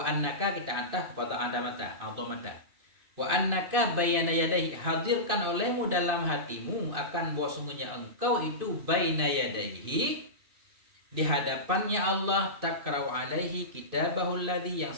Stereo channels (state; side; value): late; left; 2.5 ms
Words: annaka, kita ataf kepada adamata. Wa annaka baina yadayhi, hadirkan olehmu dalam hatimu akan bahwa sungguhnya engkau itu baina yadayhi, di hadapannya Allah, takra'u alaihi kitabahu alladhi, yang